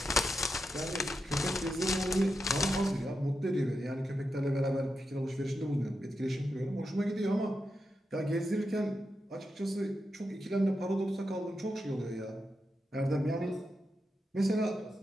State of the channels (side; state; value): both; normal; correlation 0.87